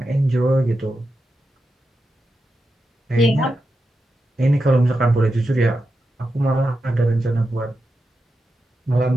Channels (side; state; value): both; normal; correlation 0.89